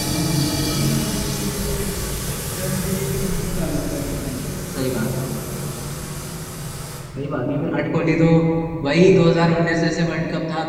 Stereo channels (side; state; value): both; identical; correlation 1.00